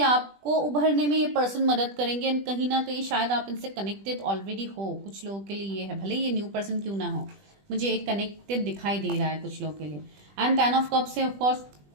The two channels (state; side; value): late; left; 20 ms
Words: आपको उभरने में ये पर्सन मदद करेंगे एंड कहीं ना कहीं शायद आप इनसे कनेक्टेड ऑलरेडी हो। कुछ लोगों के लिए ये है, भले ये न्यू पर्सन क्यों ना हो, मुझे एक कनेक्टेड दिखाई दे रहा है कुछ लोगों के लिए। एंड 10 ऑफ कप्स से ऑफकोर्स